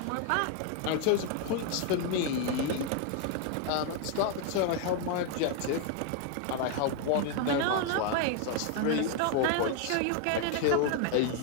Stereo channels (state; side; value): different; both; correlation 0.00